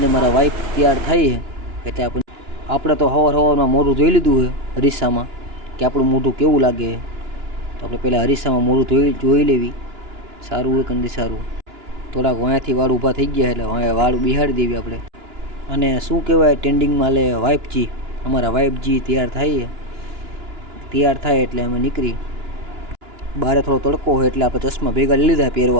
મારા વાઈફ તૈયાર થઈ છે એટલે આપણે તો સવારમાં મોઢું જોઈ લીધું છે અરીસામાં કે આપણું મોઢું કેવું લાગે. તો આપણે પહેલાં અરીસામાં મોઢું જોઈ લેવી, સારું હોય કે નથી સારું. થોડાક વાંયાથી વાળ ઊભા થઈ ગયા એટલે વાળ બિહાડી દેવી આપણે. અને શું કહેવાય, ટ્રેન્ડિંગમાં લે વાઈફજી, અમારા વાઈફજી તૈયાર થાય એટલે અમે નીકળી. બહાર થોડો તડકો હોય એટલે આપણે ચશ્મા ભેગા લઈ લીધા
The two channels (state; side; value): late; left; 2.9 ms